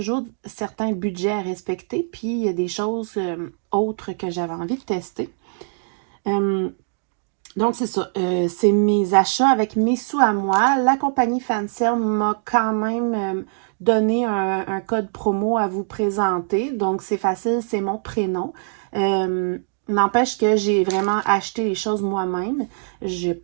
certains budgets à respecter, puis il y a des choses autres que j'avais envie de tester. Donc, c'est ça. C'est mes achats avec mes sous à moi. La compagnie Fancel m'a quand même donné un code promo à vous présenter. Donc, c'est facile, c'est mon prénom. N'empêche que j'ai vraiment acheté les choses moi-même.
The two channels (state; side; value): silent; left; digital silence